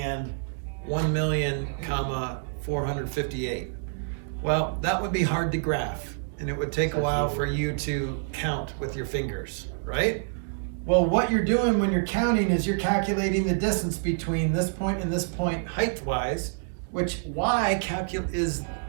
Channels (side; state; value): left; silent; digital silence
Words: 1,000,458? Well, that would be hard to graph, and it would take a while for you to count with your fingers, right? Well, what you're doing when you're counting is you're calculating the distance between this point and this point height-wise, which y